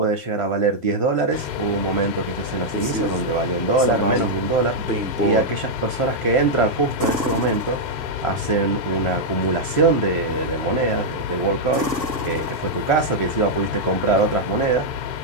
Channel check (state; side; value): late; right; 1.5 ms